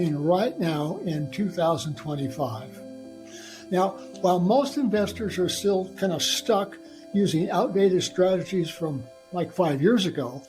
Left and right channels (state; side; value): identical; both; correlation 1.00